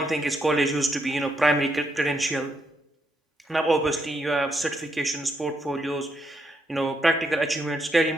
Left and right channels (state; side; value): normal; both; correlation 0.78